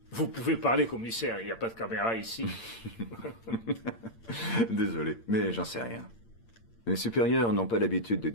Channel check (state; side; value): late; right; 8.8 ms